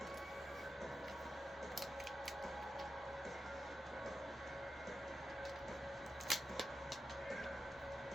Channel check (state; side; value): normal; both; correlation 0.89